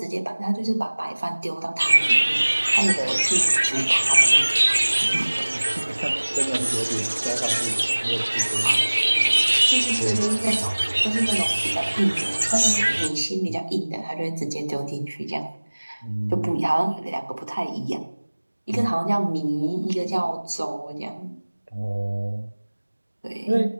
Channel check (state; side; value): inverted; both; correlation -1.00